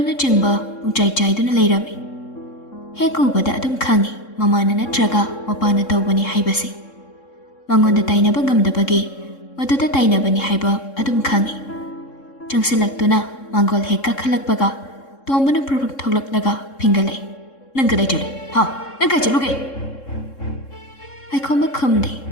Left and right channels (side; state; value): right; late; 3.7 ms